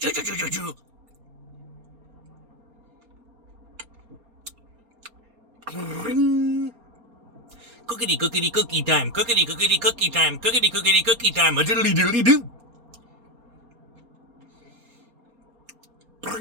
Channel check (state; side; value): late; left; 4.3 ms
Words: choo choo choo choo. Cookity cookity cookie time. Cookity cookity cookie time. Cookity cookity cookie time. A diddly diddly doo.